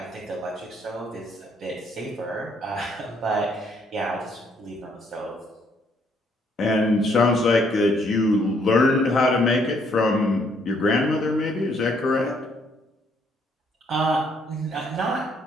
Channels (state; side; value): normal; both; correlation 0.68